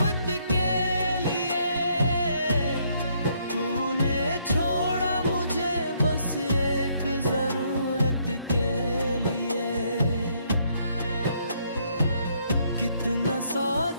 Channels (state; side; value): inverted; both; correlation -0.70